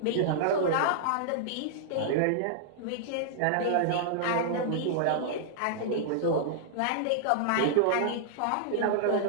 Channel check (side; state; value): both; different; correlation -0.01